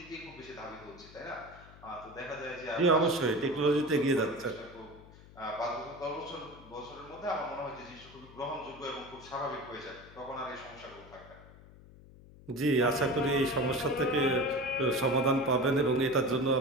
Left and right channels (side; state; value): left; noise; hum, 21 dB below the sound